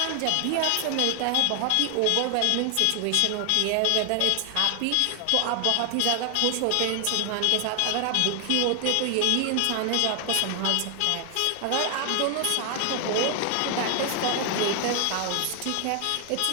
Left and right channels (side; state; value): both; different; correlation 0.00